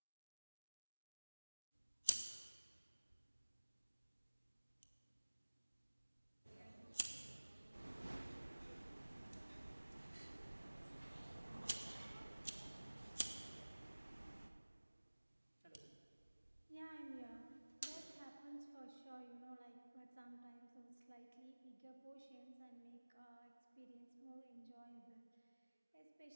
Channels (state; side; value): inverted; both; correlation -1.00